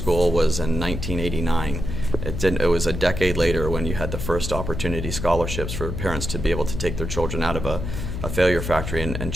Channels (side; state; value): left; noise; hum, 5 dB below the sound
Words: was in 1989. It was a decade later when you had the first opportunity scholarships for parents to be able to take their children out of a failure factory and